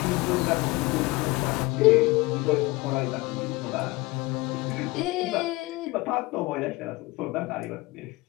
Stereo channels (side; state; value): right; quieter; 22.1 dB